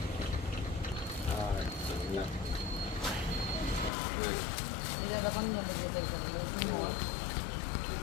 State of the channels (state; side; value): drops out; right; at 3.9 s